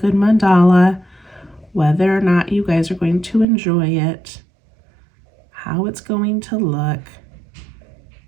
mandala, whether or not you guys are going to enjoy it, how it's going to look.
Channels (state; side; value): drops out; left; at 3.5 s